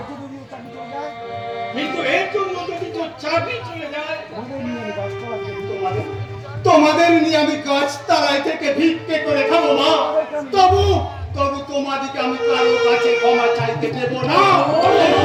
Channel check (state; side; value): identical; both; correlation 1.00